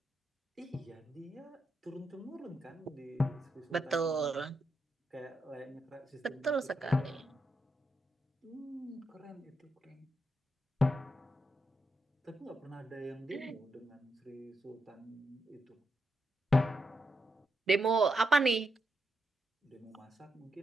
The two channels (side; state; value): both; normal; correlation 0.82